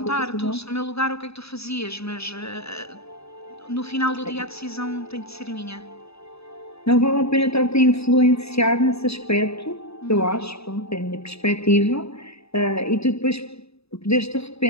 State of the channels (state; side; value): late; right; 0.78 ms